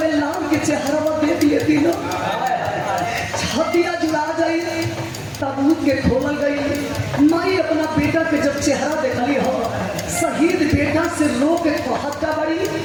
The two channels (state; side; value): identical; both; correlation 1.00